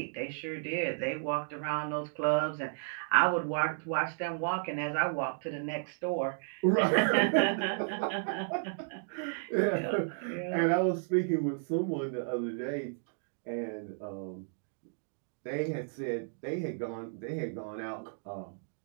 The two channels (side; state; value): left; silent; digital silence